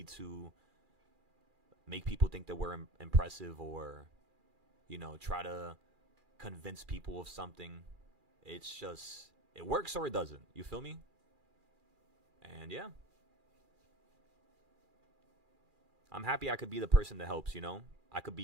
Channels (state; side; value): late; left; 2.4 ms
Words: to make people think that we're impressive or, try to convince people of something. It's just, it works or it doesn't. You feel me? And yeah, I'm happy I could be the person that helps, I could